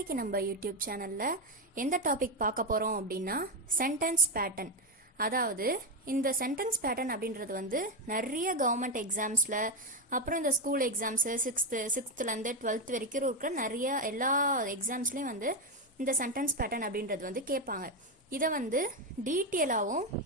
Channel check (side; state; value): both; normal; correlation 0.10